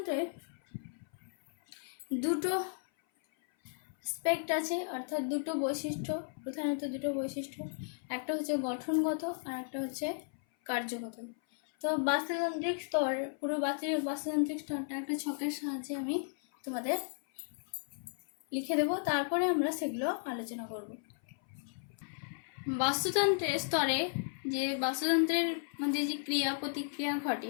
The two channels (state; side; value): silent; right; 55 dB below the other